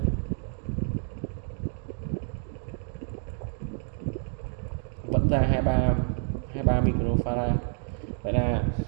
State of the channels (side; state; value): left; silent; 59 dB below the other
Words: Vẫn ra 23 microfarad. Vậy là